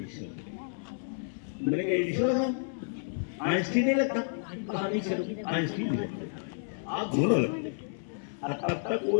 मैंने कहा एडिशनल आइंस्टीन नहीं लगता, कहानी चलो आइंस्टीन नहीं लगता, आप दोनों लगते। और तब तक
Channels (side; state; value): right; silent; 57 dB below the other